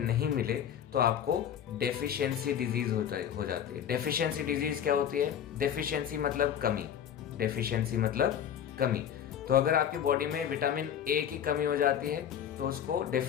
मिले तो आपको डेफिशिएंसी डिजीज़ हो जाती है। डेफिशिएंसी डिजीज़ क्या होती है? डेफिशिएंसी मतलब कमी, डेफिशिएंसी मतलब कमी। तो अगर आपकी बॉडी में विटामिन ए की कमी हो जाती है तो उसको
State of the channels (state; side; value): quieter; right; 9.2 dB